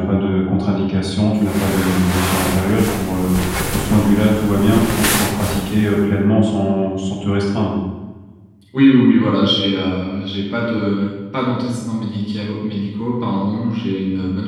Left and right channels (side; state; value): both; identical; correlation 1.00